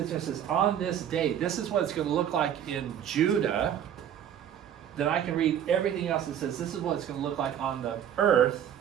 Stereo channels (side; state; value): left; quieter; 9.7 dB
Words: there and says, on this day, this is what it's going to look like in Judah, then I can read everything else that says this is what it's going to look like on the earth